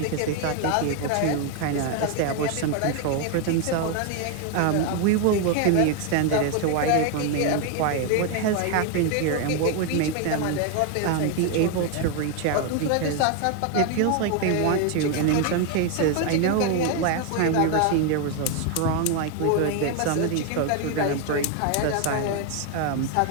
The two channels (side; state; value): both; different; correlation 0.01